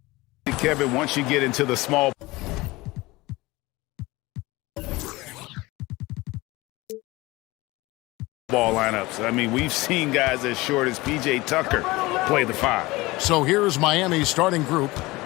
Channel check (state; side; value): quieter; right; 21.0 dB